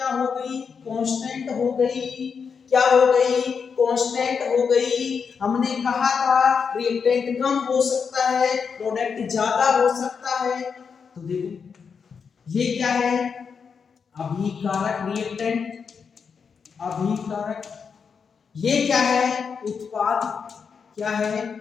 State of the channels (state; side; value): quieter; right; 6.1 dB